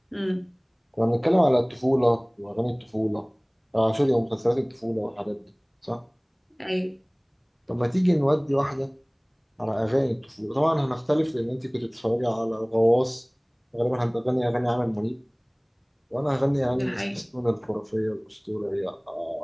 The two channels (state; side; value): identical; both; correlation 1.00